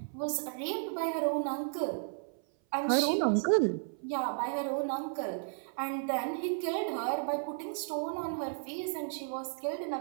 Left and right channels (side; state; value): left; silent; 55 dB below the other